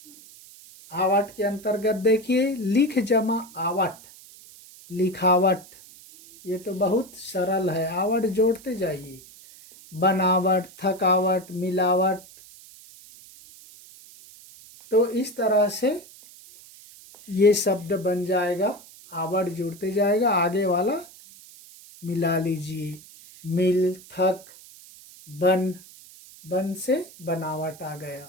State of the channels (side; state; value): right; noise; hiss, 21 dB below the sound